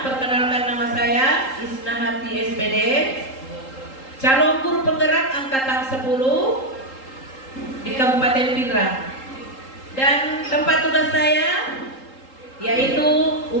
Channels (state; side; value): late; right; 3.8 ms